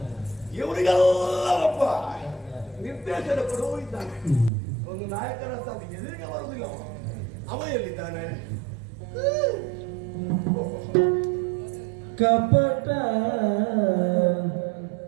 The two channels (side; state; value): left; drops out; at 4.5 s